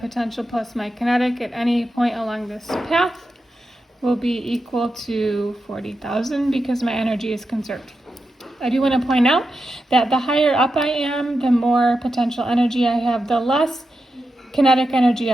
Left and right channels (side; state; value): both; normal; correlation 0.89